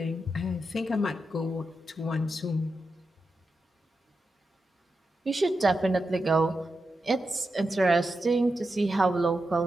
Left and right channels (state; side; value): normal; both; correlation 0.88